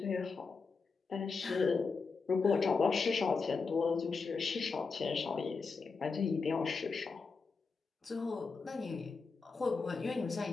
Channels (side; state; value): right; quieter; 4.6 dB